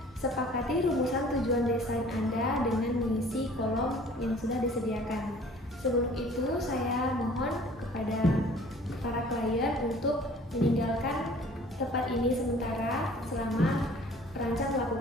Sepakati rumusan tujuan desain Anda dengan mengisi kolom yang sudah disediakan. Sebelum itu, saya mohon kepada para klien untuk meninggalkan tempat ini sementara selama perancang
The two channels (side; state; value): both; normal; correlation 0.51